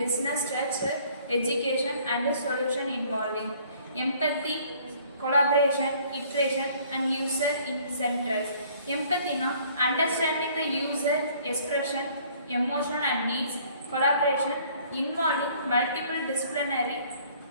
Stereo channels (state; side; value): inverted; both; correlation -0.57